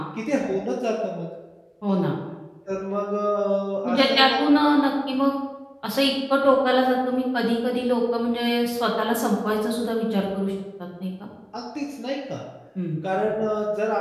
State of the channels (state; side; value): identical; both; correlation 1.00